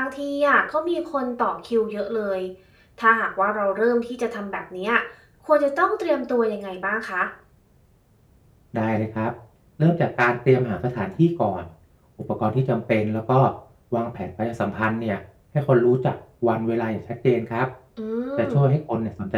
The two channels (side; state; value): both; identical; correlation 1.00